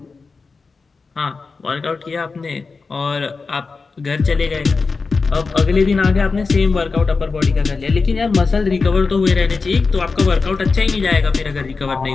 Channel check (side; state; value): right; quieter; 4.4 dB